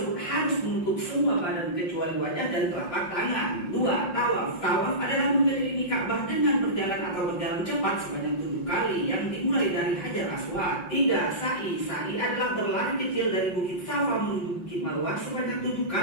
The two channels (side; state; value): right; late; 5.6 ms